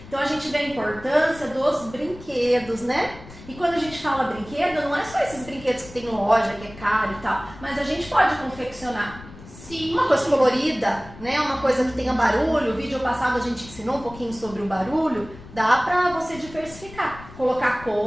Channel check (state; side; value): noise; left; rumble, 17 dB below the sound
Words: Então a gente vê a importância dos brinquedos, né? E quando a gente fala brinquedo, não é só esses brinquedos que tem loja, que é caro e tal, mas a gente pode confeccionar. Sim. Uma coisa colorida, né? Uma coisa que tenha barulho. O vídeo passado a gente ensinou um pouquinho sobre o barulho. Dá pra você diversificar, colocar